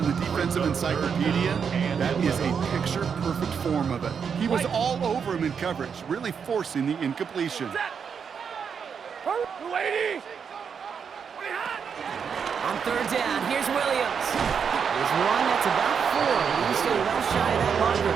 the defensive encyclopedia, that is a picture-perfect form of it. He was all over him in coverage, really forcing the incompletion. Yellow 80. On 3rd down, here's Williams. There's one that's about 4. He's still well shy of that marker.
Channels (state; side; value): quieter; left; 6.7 dB